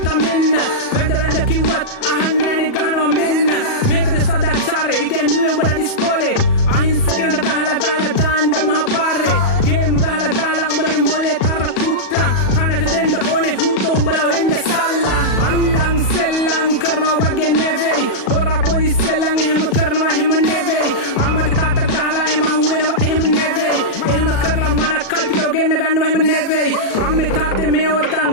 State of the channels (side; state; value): right; late; 36 ms